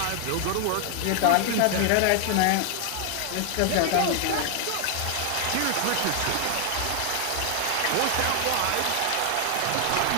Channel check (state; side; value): different; both; correlation 0.00